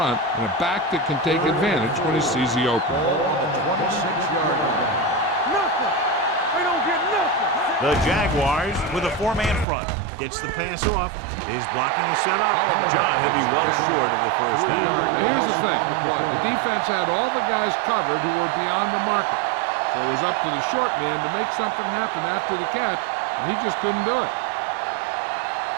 and a back that can take advantage when he sees the opening. Ball on the 26-yard line. Nothing. They don't get nothing. The Jaguars with a 4-man front. Gets the pass off. Is blocking is set up. John, he'll be well short of the first down. Now, here's the thing. The defense had all the guys covered who were beyond the marker. So it was up to the short man to make something happen after the catch, and he just couldn't do it.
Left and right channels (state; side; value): drops out; left; at 9.7 s